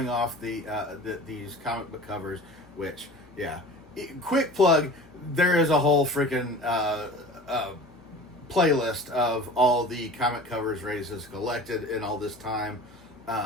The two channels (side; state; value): both; normal; correlation 0.39